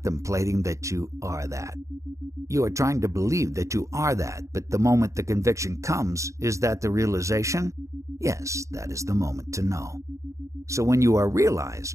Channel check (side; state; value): left; late; 0.15 ms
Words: that you are that. You are trying to believe that you are that, but the moment the conviction comes, is that the realization? Yes, that is the moment to know. So when you are realized,